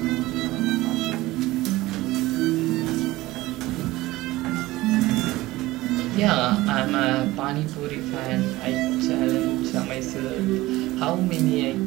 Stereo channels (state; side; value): quieter; left; 18.4 dB